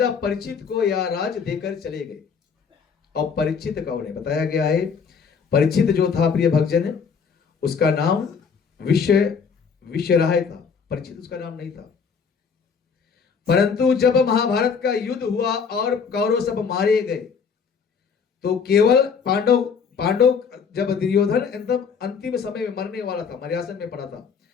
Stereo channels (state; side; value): quieter; right; 6.0 dB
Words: परीक्षित को यह राज देकर चले गए। और परीक्षित का उन्हें बताया गया है, परीक्षित जो था प्रिय भक्तजन, उसका नाम विश्वराय था, परीक्षित उसका नाम नहीं था। परंतु जब महाभारत का युद्ध हुआ और कौरव सब मारे गए तो केवल पांडव जब दुर्योधन एकदम अंतिम समय में मरने वाला था, मर्यासन में पड़ा था,